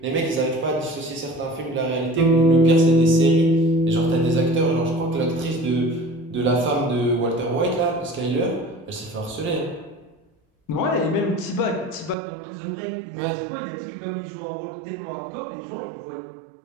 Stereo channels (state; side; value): drops out; left; at 12.2 s